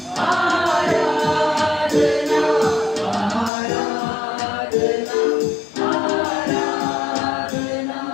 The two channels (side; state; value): right; drops out; at 3.5 s